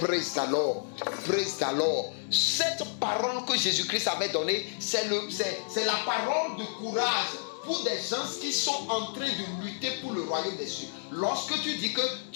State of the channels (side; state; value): right; silent; digital silence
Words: the Lord. Praise the Lord. Cette parole que Jésus-Christ avait donnée, c'est la parole de courage pour des gens qui sont en train de lutter pour le royaume des cieux. Lorsque tu dis que